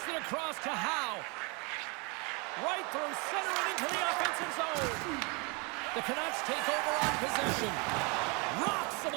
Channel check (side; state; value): left; quieter; 30.8 dB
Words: it across to Howe. Right through center and into the offensive zone. The Canucks take over on possession. Rocks him